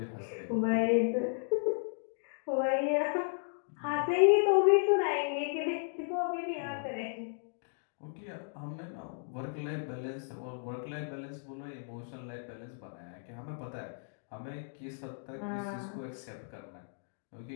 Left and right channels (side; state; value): right; silent; digital silence